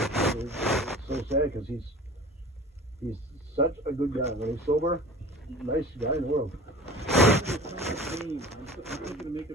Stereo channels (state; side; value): normal; both; correlation 0.40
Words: it's so sad because he's such a good guy. When he's sober, nice guy in the world.